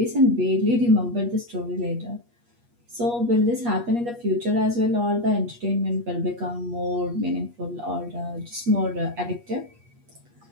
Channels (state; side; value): late; left; 8.4 ms